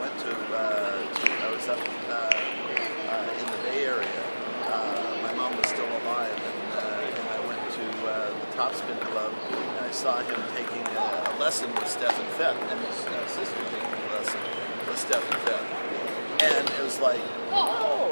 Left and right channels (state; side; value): inverted; both; correlation -1.00